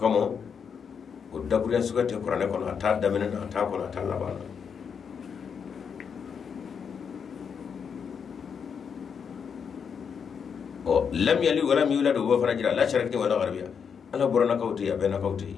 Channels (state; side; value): quieter; right; 6.7 dB